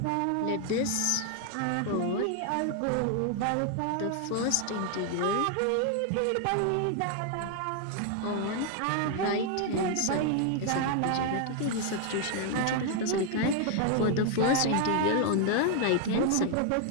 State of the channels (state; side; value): different; both; correlation 0.00